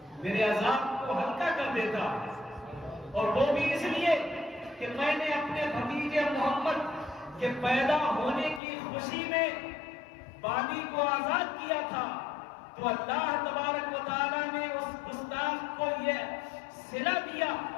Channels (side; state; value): right; drops out; at 8.6 s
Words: میرے عذاب کو ہلکا کر دیتا، اور وہ بھی اس لیے کہ میں نے اپنے بھتیجے محمد کے پیدا ہونے کی خوشی میں بانی کو آزاد کیا تھا، تو اللہ تبارک و تعالیٰ نے اس گستاخ کو یہ صلہ دیا